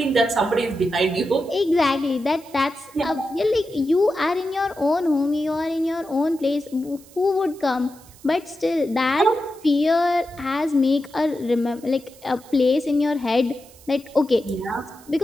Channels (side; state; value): right; noise; hiss, 24 dB below the sound